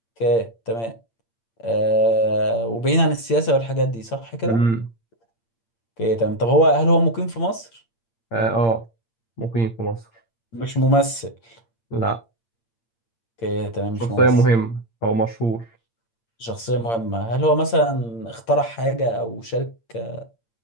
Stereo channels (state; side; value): late; right; 8.7 ms